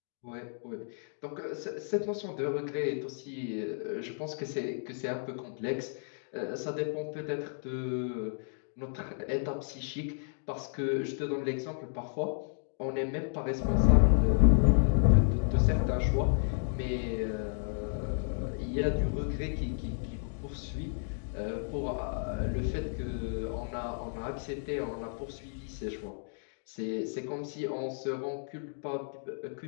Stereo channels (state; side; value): silent; right; digital silence